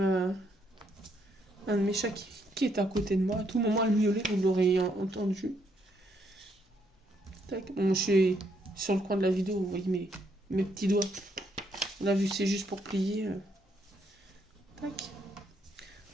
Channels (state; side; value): normal; both; correlation 0.73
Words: de mes chats qui est à côté de moi. À tout moment, elle miaulait, vous l'aurez entendu. Tac. Bon, je suis sur le coin de la vidéo, vous voyez mes petits doigts. Là, vu que c'est juste pour plier. Tac.